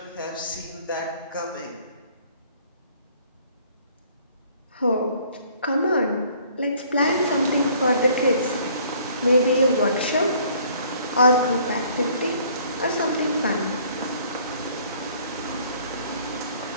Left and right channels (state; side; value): inverted; both; correlation -0.58